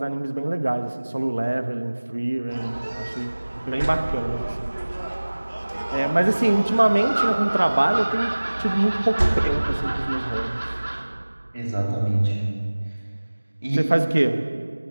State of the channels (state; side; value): inverted; both; correlation -1.00